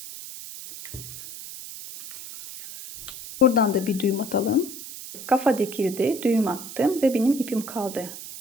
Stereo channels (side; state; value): right; noise; hiss, 12 dB below the sound